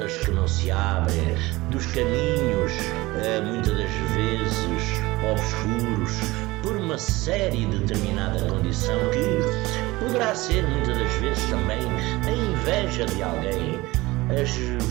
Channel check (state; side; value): quieter; left; 20.5 dB